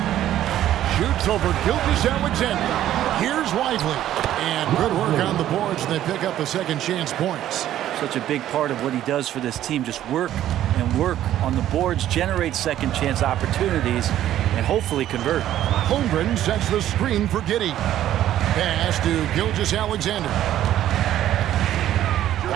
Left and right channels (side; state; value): left; quieter; 12.4 dB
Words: Shoots over Gilgeous-Alexander. Here's Lively. And good work on the boards. They pick up the second chance points. Such a big part of what he does for this team. Just work and work on the boards, generate second chance opportunities, and hopefully convert. Holmgren sets the screen for Giddey. Pass to Gilgeous-Alexander.